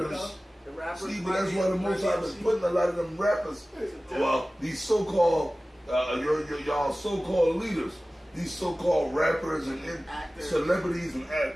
You know? The rappers. See, but that's why the most I've been putting a lot of them rappers. Well, these so-called y'all so-called leaders, these so-called rappers and celebrities and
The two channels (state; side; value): normal; both; correlation 0.97